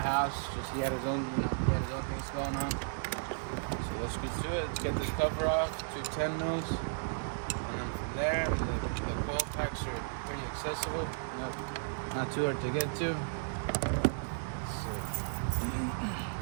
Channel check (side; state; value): left; silent; digital silence